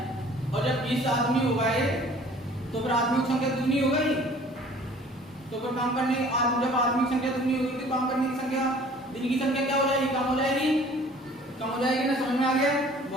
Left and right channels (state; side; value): normal; both; correlation 0.51